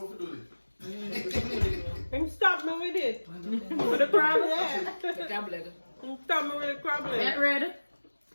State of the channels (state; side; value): inverted; both; correlation -1.00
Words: to do this. Him stop me with it. With the crab? Yeah. The crab leg. Him stop me with the crab leg. Get ready.